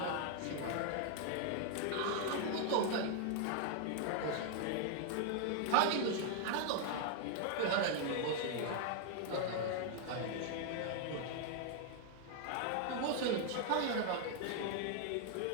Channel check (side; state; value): both; different; correlation 0.00